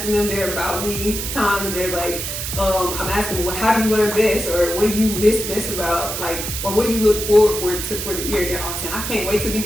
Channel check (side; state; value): right; noise; hiss, 4 dB below the sound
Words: them their about me time, and they're like, I'm asking them, how do you learn best, or what do you miss best about, or what do you look forward to for the year? They're all saying, I can't wait to be